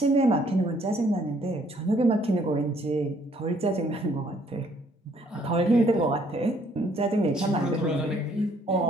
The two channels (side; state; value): both; normal; correlation 0.64